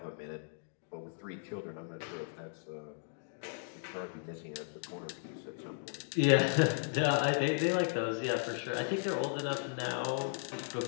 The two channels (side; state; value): right; silent; digital silence